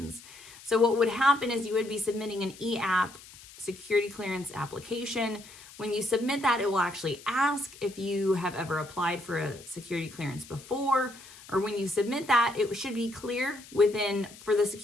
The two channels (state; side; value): noise; left; hiss, 19 dB below the sound